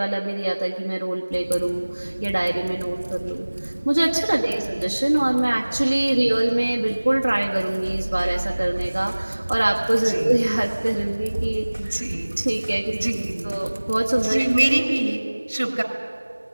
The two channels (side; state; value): both; inverted; correlation -1.00